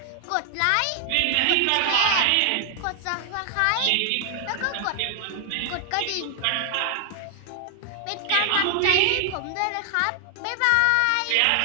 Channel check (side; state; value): both; different; correlation 0.00